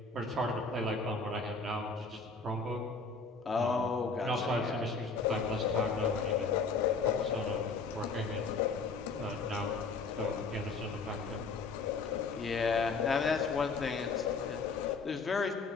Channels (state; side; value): quieter; right; 4.4 dB